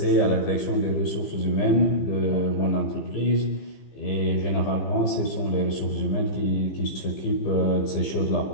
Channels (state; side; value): late; right; 15 ms